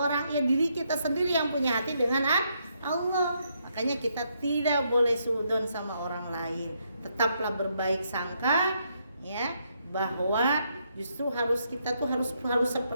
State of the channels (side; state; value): both; inverted; correlation -0.76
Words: Ya diri kita sendiri yang punya hati dengan Allah. Makanya kita tidak boleh suudzon sama orang lain. Tetaplah berbaik sangka, ya, bahwa justru kita harus